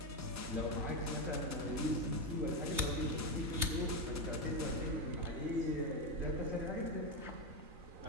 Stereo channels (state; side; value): late; left; 3.2 ms